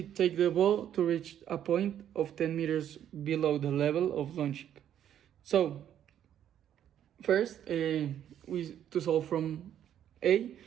take the ball to reach a point of 10 meters below the level of launching? So, first, to solve from A,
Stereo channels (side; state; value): left; quieter; 10.3 dB